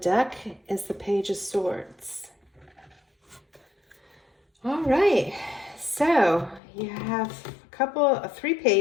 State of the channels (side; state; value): right; drops out; at 6.6 s